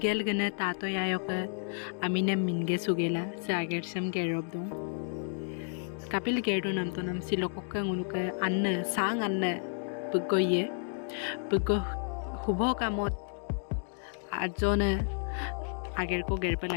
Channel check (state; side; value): silent; right; 57 dB below the other